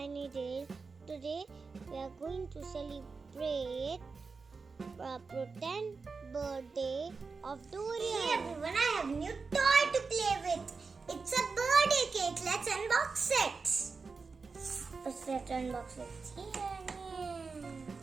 Tales. Today we are going to celebrate the pretend birthday of Dorian. Hey everyone, I have a new toy to play with. It's a birthday cake. Let's unbox it. First, let's unbox it.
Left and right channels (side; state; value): left; quieter; 4.6 dB